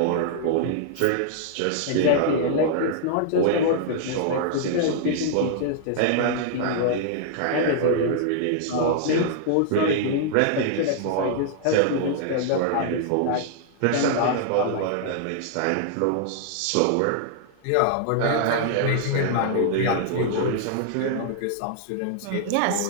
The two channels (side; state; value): both; different; correlation -0.01